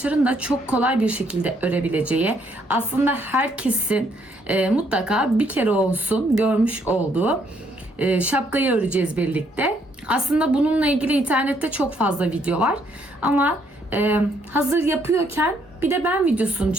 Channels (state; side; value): normal; both; correlation 0.70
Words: da çok kolay bir şekilde örebileceği, aslında herkesin mutlaka bir kere olsun görmüş olduğu şapkayı öreceğiz birlikte. Aslında bununla ilgili internette çok fazla video var. Ama hazır yapıyorken bir de ben videosunu